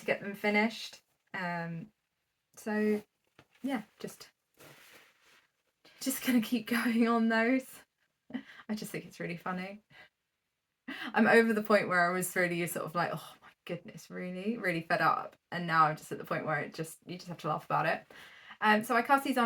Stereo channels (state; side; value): identical; both; correlation 1.00